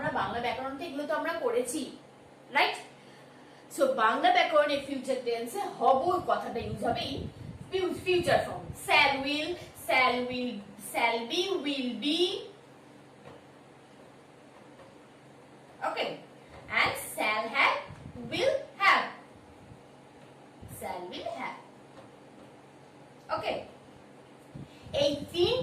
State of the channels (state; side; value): identical; both; correlation 1.00